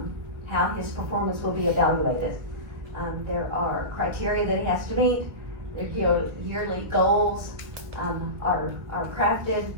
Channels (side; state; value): left; late; 2.0 ms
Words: how his performance will be evaluated. There are criteria that he has to meet. Their yearly goals are crafted.